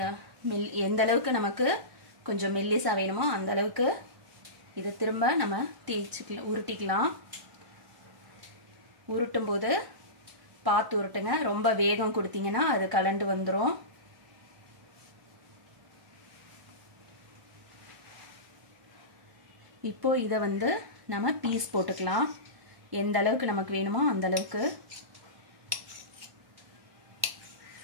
எந்த அளவுக்கு நமக்கு கொஞ்சம் மெல்லிஸாக வேணுமோ அந்த அளவுக்கு இதை திரும்ப நம்ம தேய்ச்சிக்கலாம், உருட்டிக்கலாம். உருட்டும் போது பார்த்து உருட்டுங்க, ரொம்ப வேகம் கொடுத்தீங்கன்னா அது கலண்டு வந்துடும். இப்போ இதை வந்து நம்ம பீஸ் போட்டுக்கலாம். எந்த அளவுக்கு நமக்கு வேணுமோ அந்த அளவுக்கு.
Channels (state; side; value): late; left; 1.1 ms